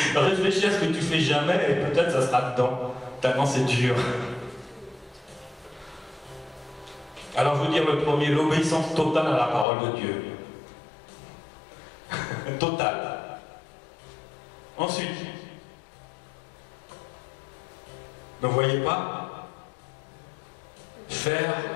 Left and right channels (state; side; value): drops out; right; at 9.7 s